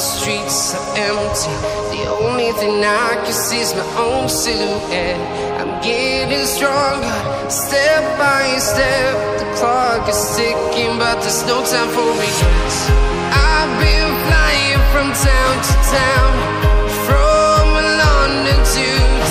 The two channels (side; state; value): both; identical; correlation 1.00